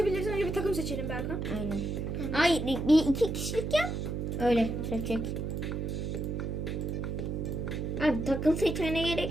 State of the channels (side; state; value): right; noise; hum, 3 dB below the sound